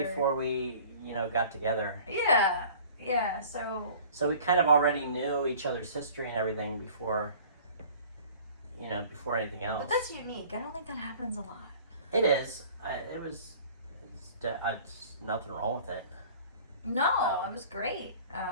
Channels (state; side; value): inverted; both; correlation -0.47